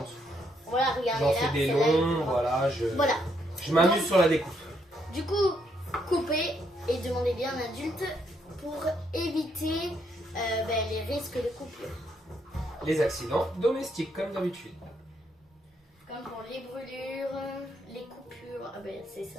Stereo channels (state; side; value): normal; both; correlation 0.74